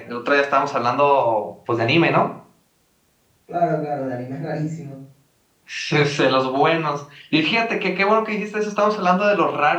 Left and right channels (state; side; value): identical; both; correlation 1.00